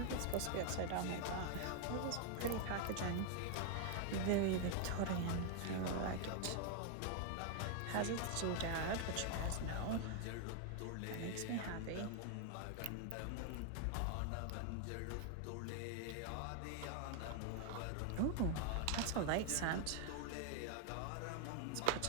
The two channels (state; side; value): different; both; correlation 0.00